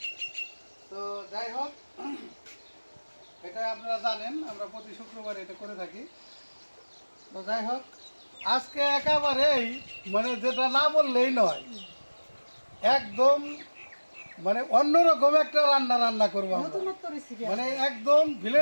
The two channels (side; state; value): both; inverted; correlation -1.00